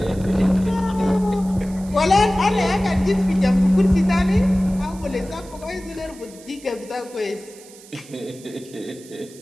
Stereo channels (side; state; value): right; noise; hiss, 21 dB below the sound